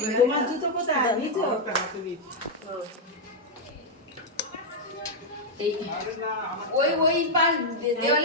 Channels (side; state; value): both; normal; correlation -0.02